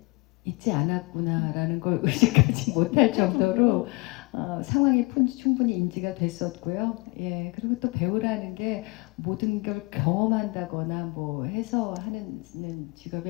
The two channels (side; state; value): right; quieter; 26.7 dB